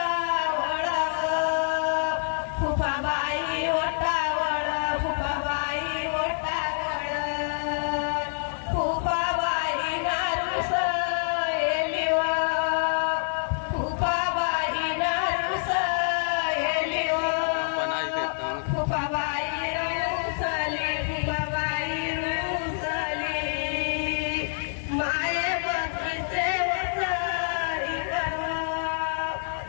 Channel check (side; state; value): right; silent; 60 dB below the other